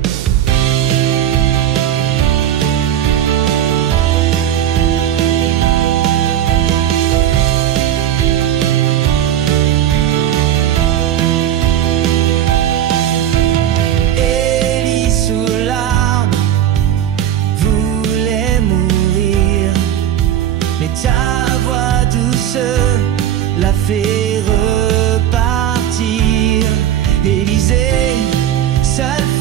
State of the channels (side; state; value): left; quieter; 10.9 dB